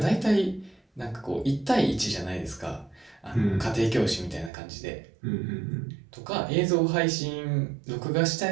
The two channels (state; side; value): drops out; left; at 4.5 s